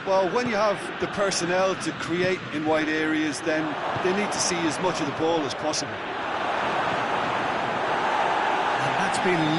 Well, when you have the personnel to create in wide areas, then they need to see as much of the ball as possible. And that's been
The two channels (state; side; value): identical; both; correlation 1.00